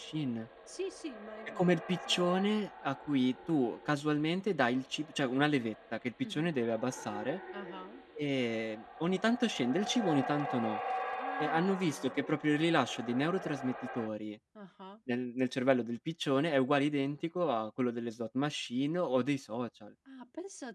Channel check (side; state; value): both; identical; correlation 1.00